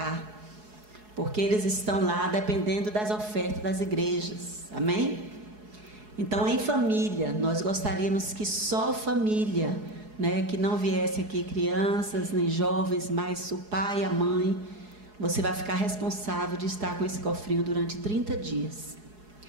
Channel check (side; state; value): left; late; 4.7 ms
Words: porque eles estão lá dependendo das ofertas das igrejas, amém? Então, em família, nós gostaríamos que só família, né, que não viesse aqui crianças, nem jovens, mas o pai e a mãe, você vai ficar responsável de estar com esse cofrinho durante 30 dias.